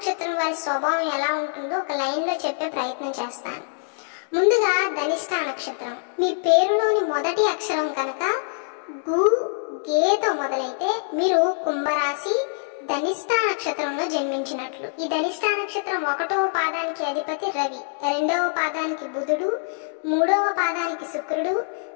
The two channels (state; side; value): silent; right; digital silence